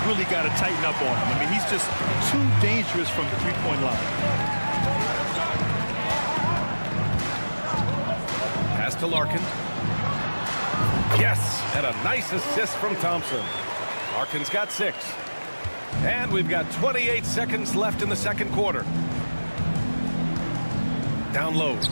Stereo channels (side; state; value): both; inverted; correlation -1.00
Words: really got to tighten up on him. I mean, he's just too dangerous from the three-point line. Pass to Larkin. Yes, and a nice assist from Thompson. Larkin's got 6. And we've got 28 seconds left in the second quarter. Down low.